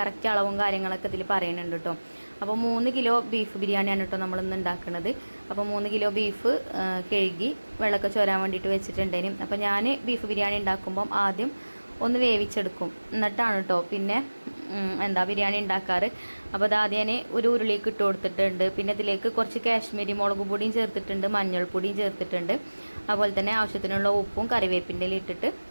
അളവും കാര്യങ്ങളൊക്കെ ഇതിൽ പറയുന്നുണ്ട് കേട്ടോ. അപ്പോൾ 3 കിലോ ബീഫ് ബിരിയാണിയാണ് കേട്ടോ നമ്മളിന്ന് ഉണ്ടാക്കുന്നത്. അപ്പോൾ 3 കിലോ ബീഫ് കഴുകി വെള്ളമൊക്കെ ചോരാൻ വേണ്ടിയിട്ട് വെച്ചിട്ടുണ്ടേനും. അപ്പോൾ ഞാൻ ബീഫ് ബിരിയാണി ഉണ്ടാക്കുമ്പം ആദ്യം ഒന്ന് വേവിച്ചെടുക്കും, എന്നിട്ടാണ് കേട്ടോ പിന്നെ ബിരിയാണി ഉണ്ടാക്കാറ്. അപ്പോൾ അത് ആദ്യം ഞാൻ ഒരു ഉരുളിക്ക് ഇട്ട് കൊടുത്തിട്ടുണ്ട്. പിന്നെ ഇതിലേക്ക് കുറച്ച് കാശ്മീരി മുളക് പൊടിയും ചേർത്തിട്ടുണ്ട്, മഞ്ഞൾപ്പൊടിയും ചേർത്തിട്ടുണ്ട്. അതുപോലെ തന്നെ ആവശ്യത്തിനുള്ള ഉപ്പും കറിവേപ്പിൻ്റെ ഇട്ടിട്ട്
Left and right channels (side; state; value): both; inverted; correlation -1.00